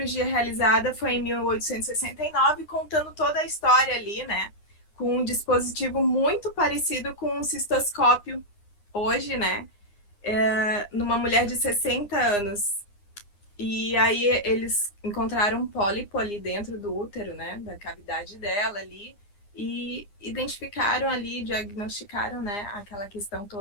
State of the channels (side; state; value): right; late; 9.8 ms